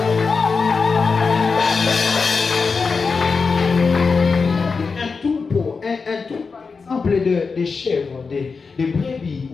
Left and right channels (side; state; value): right; quieter; 4.8 dB